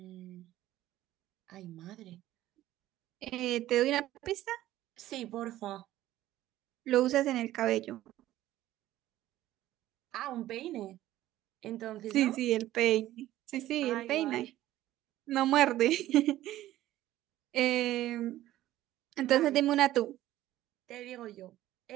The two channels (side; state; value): left; quieter; 14.5 dB